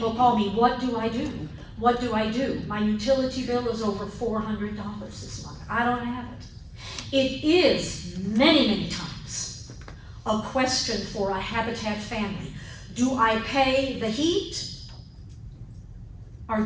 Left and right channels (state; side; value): identical; both; correlation 1.00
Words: call me, what do I do? What do I do? My utility bill is over $400 this month. I don't have it. It is many, many times a question for a Habitat family. Do I pay the heat or